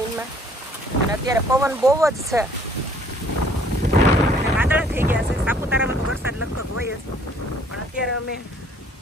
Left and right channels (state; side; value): normal; both; correlation 0.59